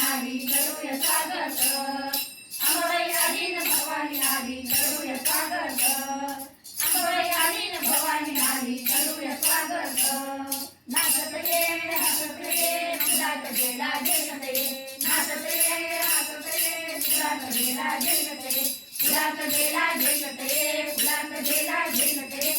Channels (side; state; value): both; identical; correlation 1.00